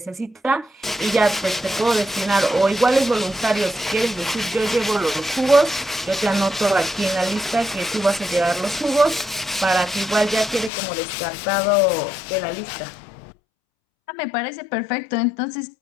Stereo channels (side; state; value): right; drops out; at 10.7 s